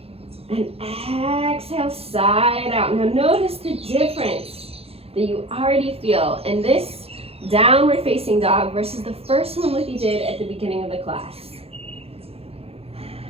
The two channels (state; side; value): late; left; 0.29 ms